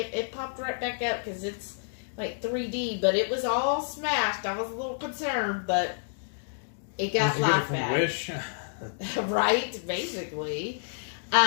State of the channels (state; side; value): silent; right; digital silence